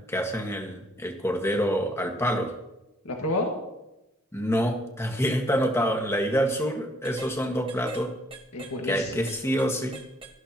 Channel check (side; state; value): both; normal; correlation 0.65